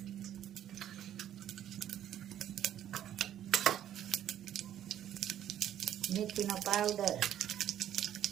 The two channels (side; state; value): left; quieter; 11.1 dB